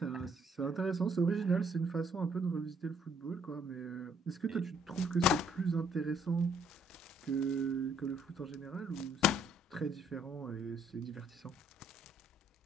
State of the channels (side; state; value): both; normal; correlation 0.66